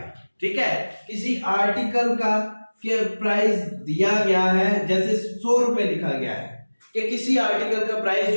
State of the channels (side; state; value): both; inverted; correlation -1.00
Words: ठीक है, किसी आर्टिकल का के प्राइस दिया गया है, जैसे 100 रुपए लिखा गया है कि किसी आर्टिकल का प्राइस